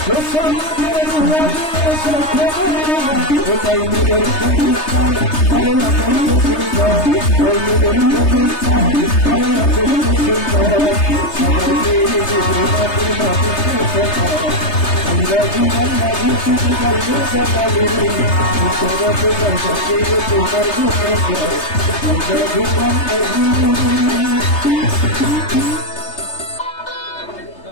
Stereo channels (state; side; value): late; right; 3.3 ms